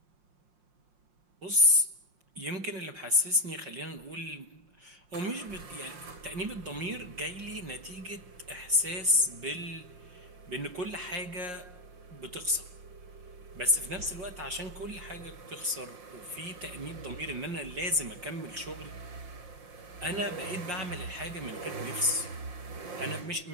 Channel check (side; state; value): left; late; 5.6 ms